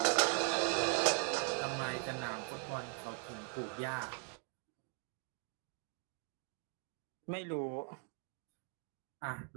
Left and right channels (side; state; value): left; quieter; 34.4 dB